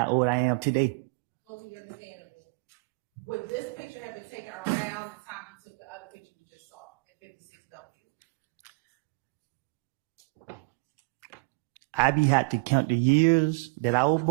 old I am today. Fully understandable. Would this picture have been taken around the time you took the other picture you just saw in 56W? I be had to count the years that I was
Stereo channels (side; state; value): left; quieter; 31.0 dB